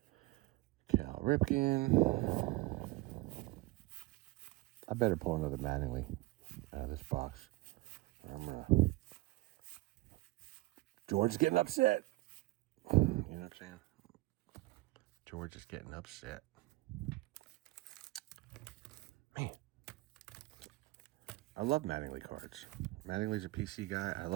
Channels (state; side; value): quieter; left; 20.3 dB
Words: Cal Ripken. I better pull another Mattingly out of this box. Or I'm going to... George is getting upset. You know what I'm saying? George is getting upset. Man. I love Mattingly cards. Mattingly's a PC guy. I